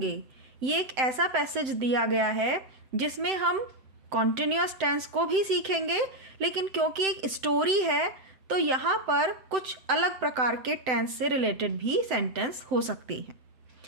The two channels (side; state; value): left; late; 7.8 ms